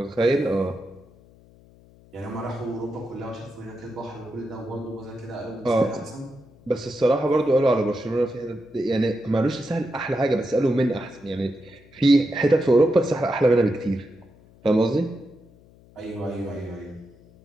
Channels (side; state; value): left; noise; hum, 26 dB below the sound